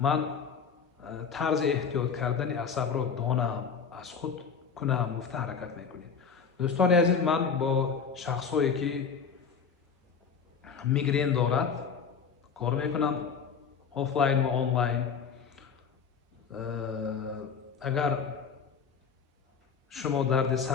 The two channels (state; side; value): quieter; right; 6.2 dB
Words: тарзи эҳтиёт кардани асабро донам, аз худ кунам, гуфта ҳаракат мекунед. Дӯстони азиз, ман бо шахсое ки мигрен дорад кор мекунам, офлайн ва онлайн. Агар шумо дарди